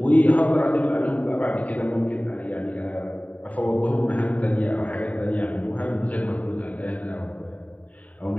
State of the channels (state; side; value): late; right; 0.069 ms